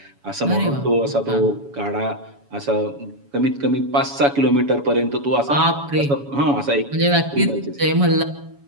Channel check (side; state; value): left; late; 7.1 ms